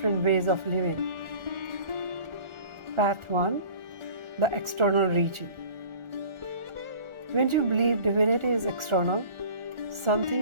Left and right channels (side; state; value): left; late; 1.4 ms